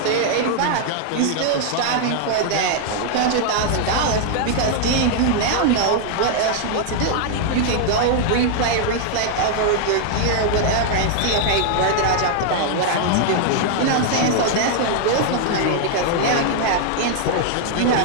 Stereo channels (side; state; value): both; different; correlation 0.00